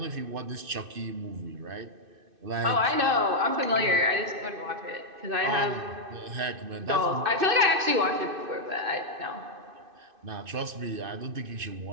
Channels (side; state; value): left; late; 2.6 ms